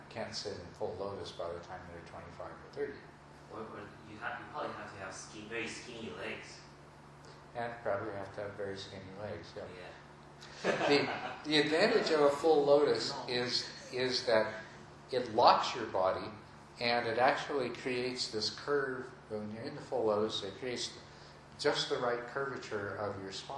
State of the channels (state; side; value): identical; both; correlation 1.00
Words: can't sit in full lotus by the time they're 25 or 30. Or you probably have to have very skinny legs. And probably have to have very skinny legs. Yeah. Yeah. The advantage of a full lotus is that it locks your body, and it actually creates this curve. When you're in the full lotus, it creates just the right curvature of your